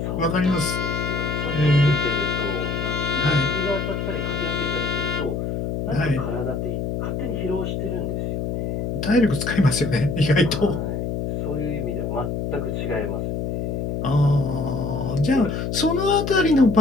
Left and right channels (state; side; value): noise; left; hum, 2 dB below the sound